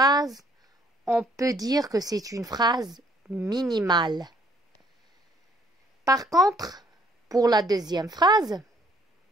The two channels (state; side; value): normal; both; correlation 0.63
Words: on peut dire que c'est une phrase minimale. Par contre, pour la deuxième phrase,